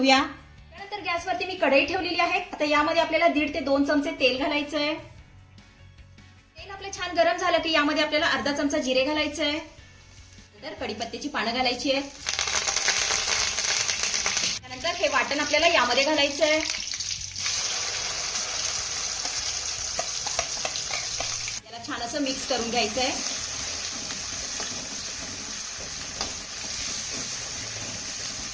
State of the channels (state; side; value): identical; both; correlation 1.00